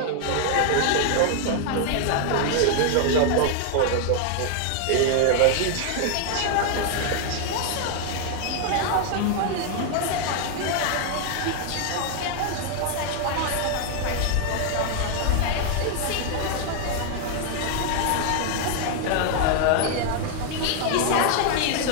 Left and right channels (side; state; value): both; different; correlation 0.00